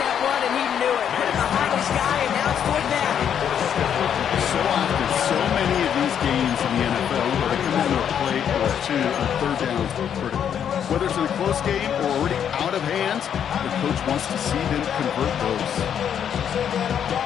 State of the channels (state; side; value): quieter; right; 8.7 dB